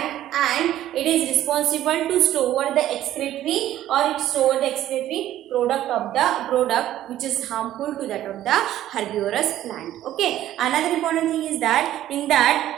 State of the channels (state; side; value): quieter; left; 12.9 dB